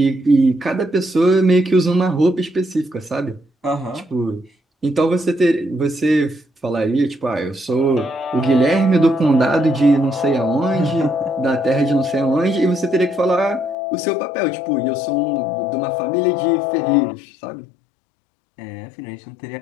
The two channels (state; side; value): drops out; right; at 13.8 s